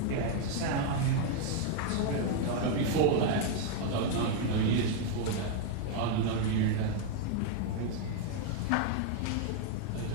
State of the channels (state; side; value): different; both; correlation 0.00